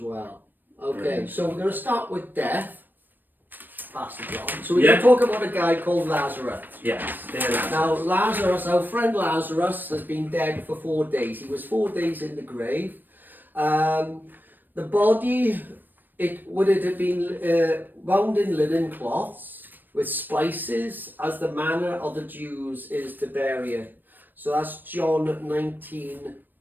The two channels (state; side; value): late; left; 0.091 ms